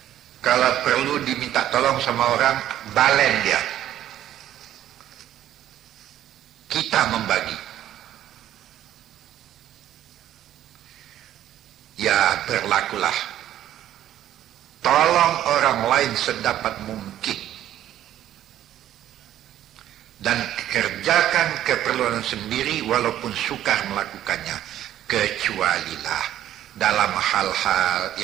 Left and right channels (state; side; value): quieter; left; 12.0 dB